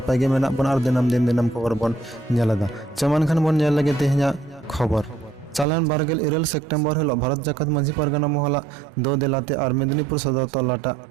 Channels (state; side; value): drops out; left; at 5.7 s